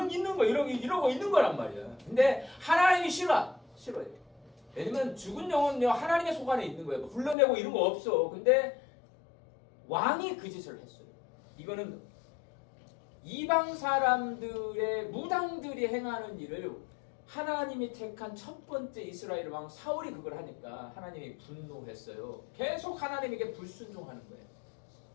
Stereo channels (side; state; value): right; drops out; at 7.4 s